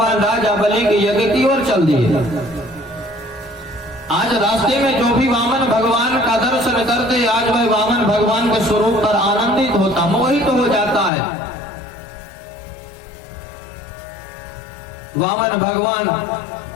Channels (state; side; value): drops out; right; at 11.1 s